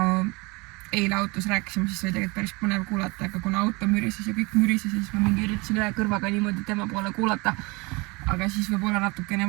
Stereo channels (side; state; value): left; quieter; 26.3 dB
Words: eile autos rääkisime, siis oli tegelikult päris põnev kuulata, aga kuna auto mürises ja kõik mürises, siis ma mingi üritasin ühe kõrvaga niimoodi tema poole kuulata. Aga siis võib-olla natukene